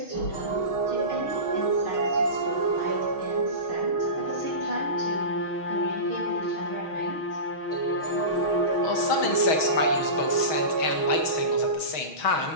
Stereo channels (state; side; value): late; right; 6.3 ms